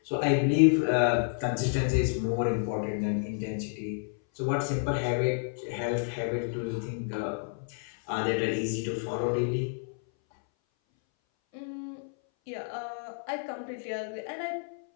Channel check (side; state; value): right; silent; 58 dB below the other